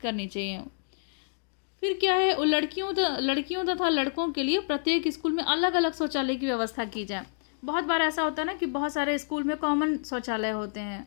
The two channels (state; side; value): silent; right; digital silence